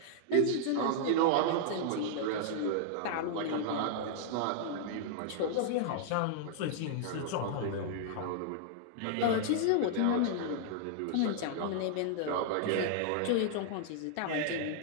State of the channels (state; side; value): different; both; correlation -0.01